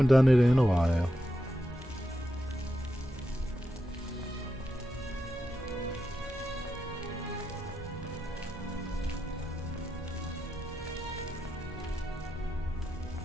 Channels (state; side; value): normal; both; correlation 0.87